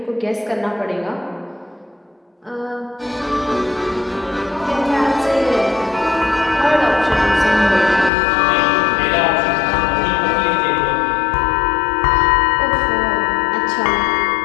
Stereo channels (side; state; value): right; drops out; at 8.1 s